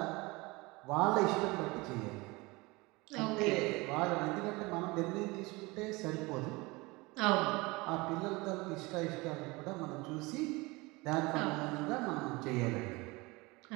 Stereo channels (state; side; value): quieter; left; 23.8 dB